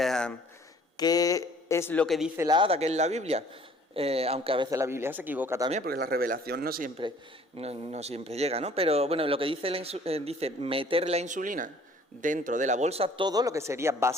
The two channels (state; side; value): normal; both; correlation 0.55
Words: ¿Qué es lo que dice la ADA, que es la Biblia? Aunque a veces la Biblia se equivoca también, porque la revelación no siempre llega, ¿no? Pero bueno, lo que dice dice meter la insulina dentro de la bolsa, todo lo que sería